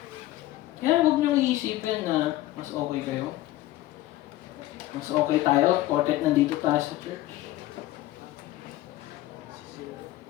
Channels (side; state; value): right; quieter; 16.0 dB